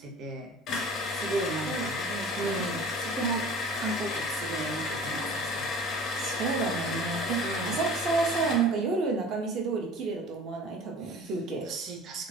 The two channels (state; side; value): normal; both; correlation 0.43